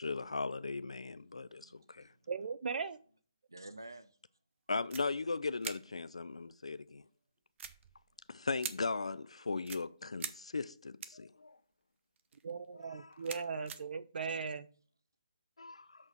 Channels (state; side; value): inverted; both; correlation -0.73